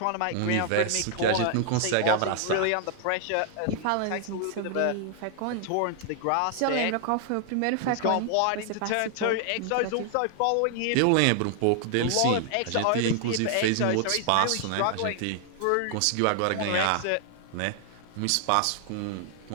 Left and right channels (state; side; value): different; both; correlation 0.00